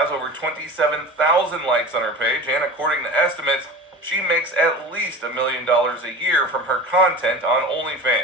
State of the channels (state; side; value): normal; both; correlation 0.33